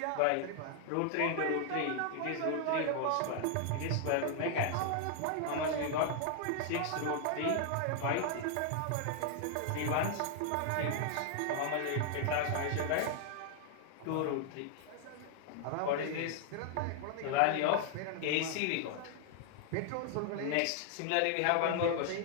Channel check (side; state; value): both; different; correlation 0.00